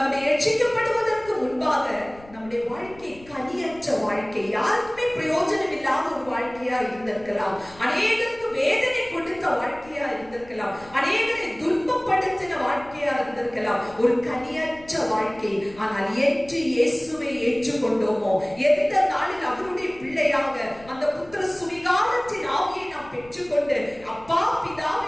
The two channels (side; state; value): left; noise; rumble, 22 dB below the sound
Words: ரட்சிக்கப்படுவதற்கு முன்பாக நம்முடைய வாழ்க்கை கனியற்ற வாழ்க்கை, யாருக்குமே பிரயோஜனம் இல்லாத ஒரு வாழ்க்கையா இருந்திருக்கலாம். அநேகருக்கு வேதனை கொடுத்த வாழ்க்கையா இருந்திருக்கலாம். அநேகரை துன்பப்படுத்தின வாழ்க்கையா இருந்திருக்கலாம். ஒரு கனியற்ற வாழ்க்கை. ஆனால் என்று இயேசுவை ஏற்றுக்கொண்டோமோ, எந்த நாளில் அவருடைய பிள்ளையாக அந்த புத்திர சுவிகாரத்தின் ஆவியை நாம் பெற்றுக்கொண்டு அப்பா பிதாவே